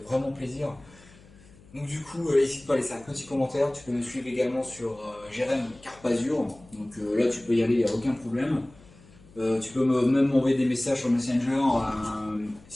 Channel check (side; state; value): left; noise; hum, 24 dB below the sound